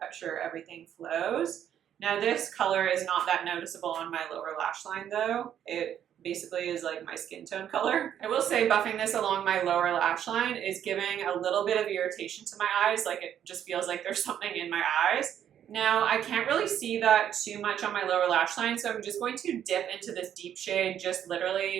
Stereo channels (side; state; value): left; quieter; 9.9 dB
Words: sure everything flows. Now this color is not that noticeable on my lower lash line though. It basically is like my skin tone color. I will say buffing this along my lower lash line is giving a little bit of irritation to my eyes. Like it just feels like there's something in my eyes. Now, I can't really see that too much on my lower lash line, so I'm just going to dip into this deep shade just